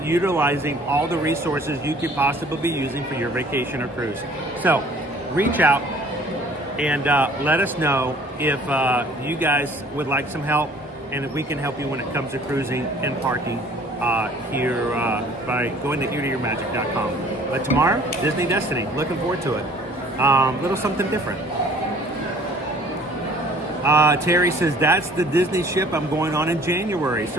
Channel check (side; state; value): both; normal; correlation 0.53